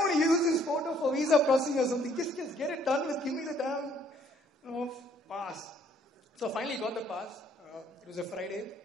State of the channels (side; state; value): both; normal; correlation 0.63